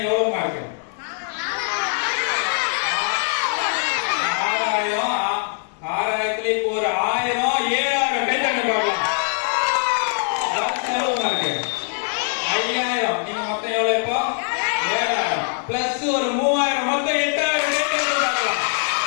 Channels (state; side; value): silent; right; 64 dB below the other